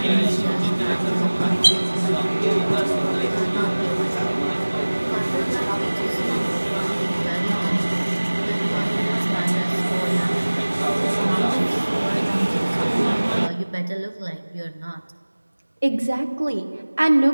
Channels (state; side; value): inverted; both; correlation -1.00